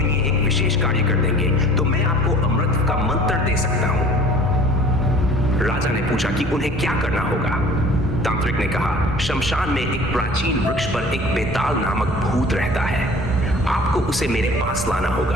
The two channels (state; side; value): normal; both; correlation 0.48